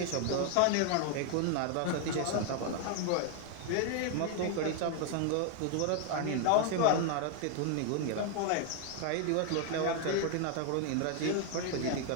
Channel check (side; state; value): both; different; correlation 0.00